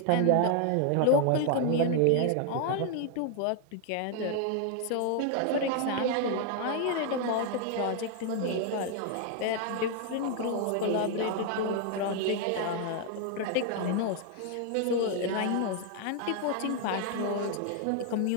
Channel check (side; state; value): both; different; correlation 0.00